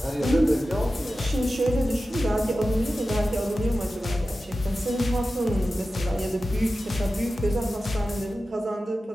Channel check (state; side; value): normal; both; correlation 0.93